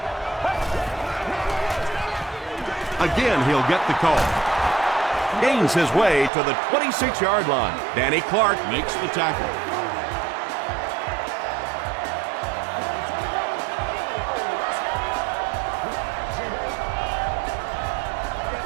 Again, he'll get the call. Gains his way to the 26-yard line. Danny Clark makes the tackle.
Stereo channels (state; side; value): drops out; left; at 6.3 s